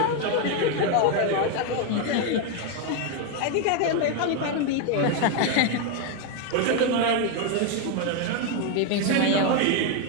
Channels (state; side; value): different; both; correlation 0.01